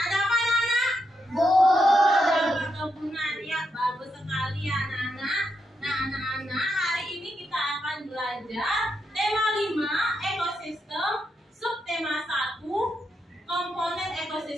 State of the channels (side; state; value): both; normal; correlation 0.83